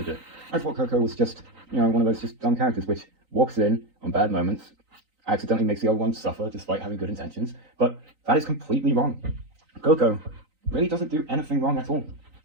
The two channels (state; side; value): late; left; 3.9 ms